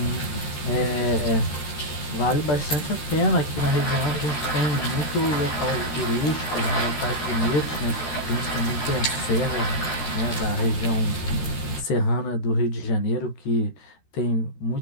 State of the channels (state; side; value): late; right; 13 ms